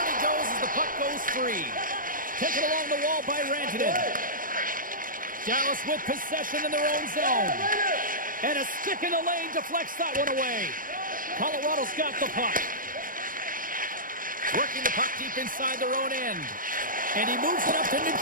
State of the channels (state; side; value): late; left; 0.40 ms